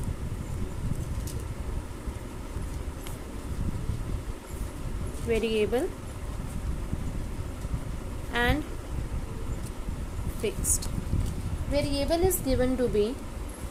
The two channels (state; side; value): identical; both; correlation 1.00